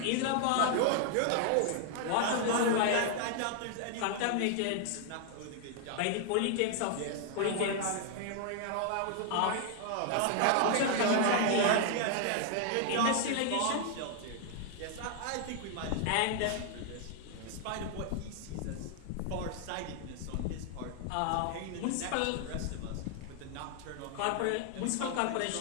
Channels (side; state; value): both; different; correlation 0.00